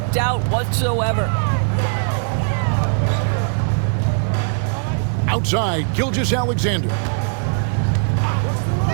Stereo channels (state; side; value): silent; left; 66 dB below the other